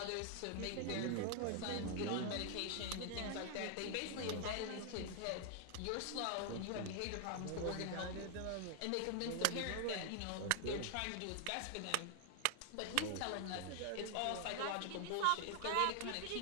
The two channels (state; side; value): different; both; correlation 0.00